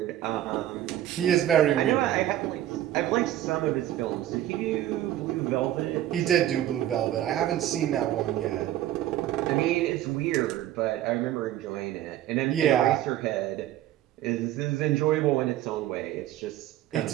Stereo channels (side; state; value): left; quieter; 12.9 dB